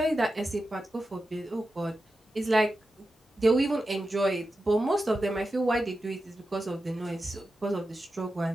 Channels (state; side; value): normal; both; correlation 0.91